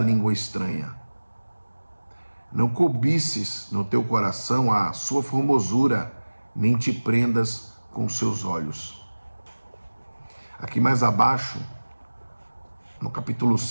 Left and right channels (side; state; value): both; inverted; correlation -1.00